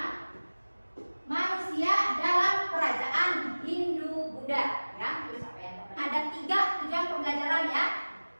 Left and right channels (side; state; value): both; inverted; correlation -1.00